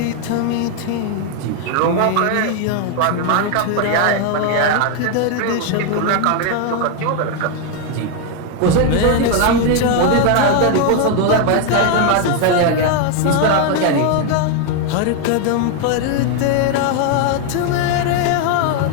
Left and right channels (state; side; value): different; both; correlation 0.01